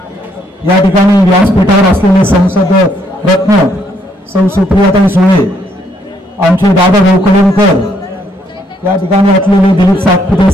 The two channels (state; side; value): normal; both; correlation 0.71